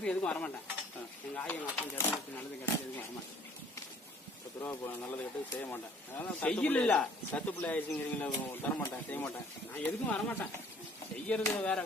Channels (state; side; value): normal; both; correlation 0.56